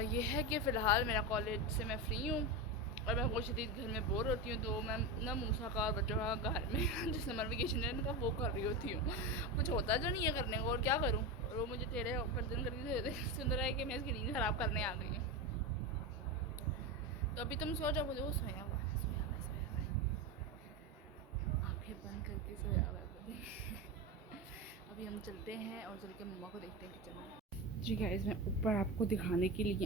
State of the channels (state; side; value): normal; both; correlation 0.18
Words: ये है कि फ़िलहाल मेरा कॉलेज से मैं फ्री हूँ और मैं बहुत शदीद घर में बोर होती हूँ। तो मैं ना मूसा का और बच्चों का घर में जो समर वेकेशन है उनका वो कर रही होती हूँ। कुछ होता जो नहीं है करने को, और क्या करूँ। और वो मुझे टेढ़े गर्दन करके सुन रहा है कि मैं इसकी नींद ख़राब करने आ गई हूँ। तो अभी तुम सो जाओ, बोले वो सोया हुआ है, सोया हुआ है, सोया हुआ है, आँखें बंद करके सोया हुआ है बोले। अभी हम चलते हैं और चल के मम्मा को देखते हैं किचन में। जी गाइस, मैं ऊपर आपको दिखाने के लिए